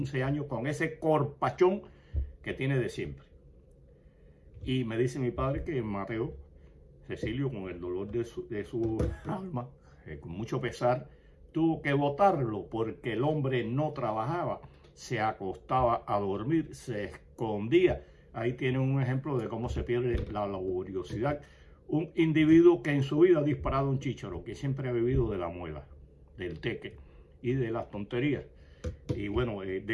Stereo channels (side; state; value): both; identical; correlation 1.00